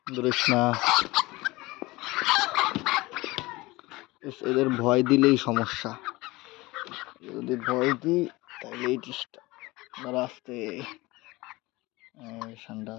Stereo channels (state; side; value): quieter; right; 21.2 dB